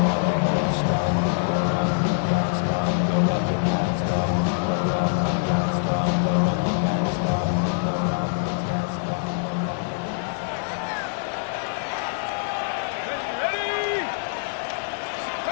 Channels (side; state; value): right; silent; digital silence